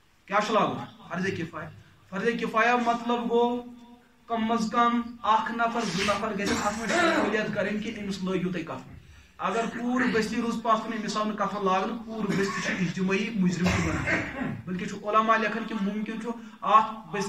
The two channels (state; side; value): identical; both; correlation 1.00